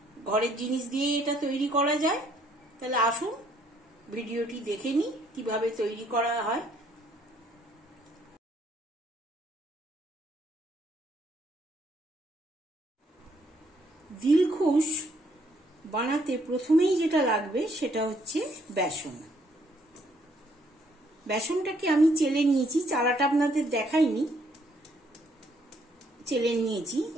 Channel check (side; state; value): both; normal; correlation 0.68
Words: ঘরের জিনিস দিয়ে এটা তৈরি করা যায়। তাহলে আসুন ভিডিওটি দেখে নিই কিভাবে তৈরি করা হয়। দিলখুশ বানাতে প্রথমেই যেটা লাগবে সেটা হচ্ছে বেসন। বেসনটাকে আমি চেলে নিয়েছি, চালাটা আপনাদের দেখাইনি, চেলে নিয়েছি।